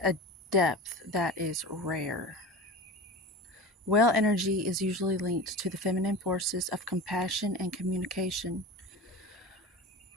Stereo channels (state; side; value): normal; both; correlation 0.32